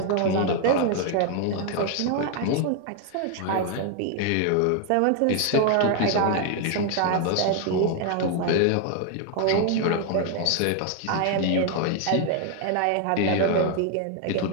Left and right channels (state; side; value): different; both; correlation 0.00